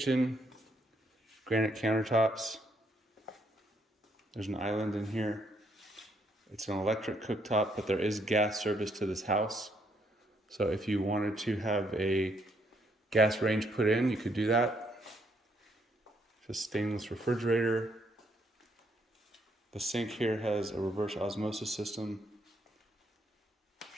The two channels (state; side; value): normal; both; correlation 0.72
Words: granite countertops. There's an island in here. It's an electric cooktop, but there is gas service to this house. So if you wanted to have a gas range put in, you could do that. Just stainless refrigerator. The sink here has a reverse osmosis system.